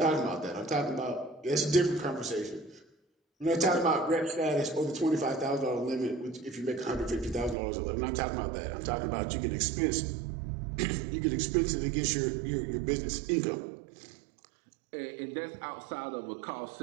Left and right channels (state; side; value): drops out; left; at 7.6 s